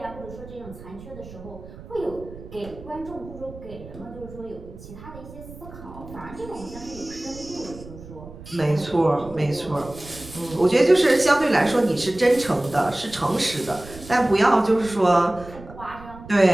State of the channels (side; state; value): right; noise; rumble, 16 dB below the sound